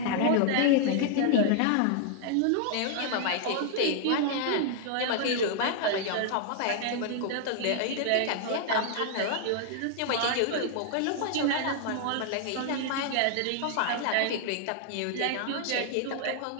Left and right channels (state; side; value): different; both; correlation 0.00